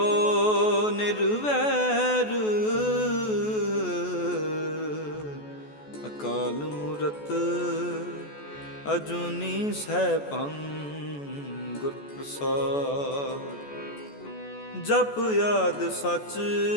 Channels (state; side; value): late; right; 14 ms